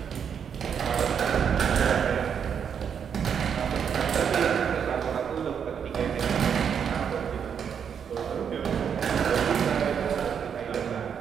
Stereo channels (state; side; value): quieter; left; 7.5 dB